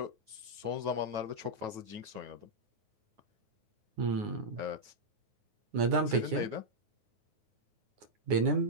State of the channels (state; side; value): late; left; 9.7 ms